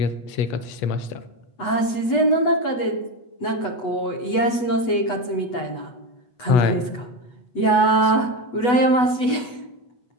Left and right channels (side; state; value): right; late; 8.1 ms